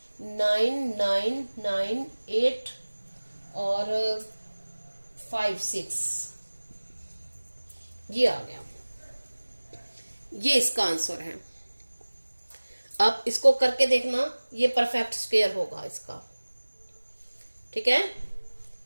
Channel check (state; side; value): inverted; both; correlation -1.00